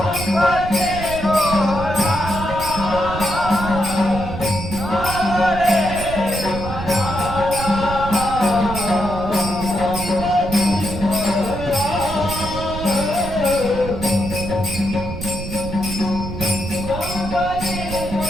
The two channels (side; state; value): right; noise; rumble, 8 dB below the sound